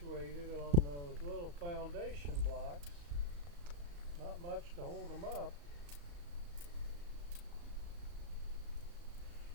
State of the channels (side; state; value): left; late; 35 ms